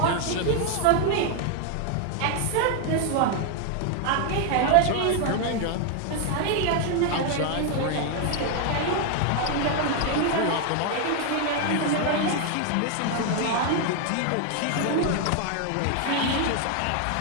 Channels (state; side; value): different; both; correlation 0.01